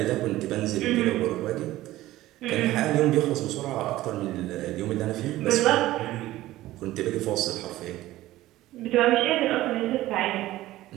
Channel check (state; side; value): quieter; left; 16.0 dB